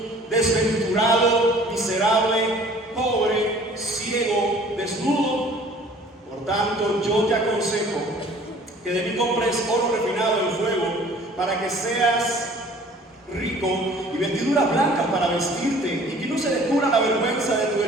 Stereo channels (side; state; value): both; normal; correlation 0.51